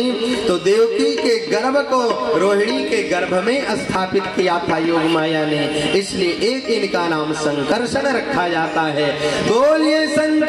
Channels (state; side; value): identical; both; correlation 1.00